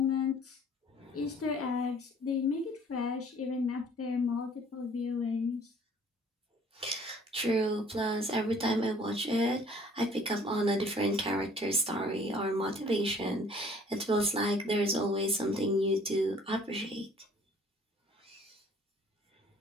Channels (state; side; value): normal; both; correlation 0.55